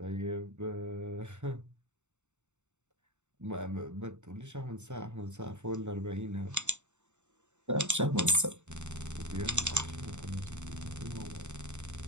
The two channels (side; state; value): left; late; 0.84 ms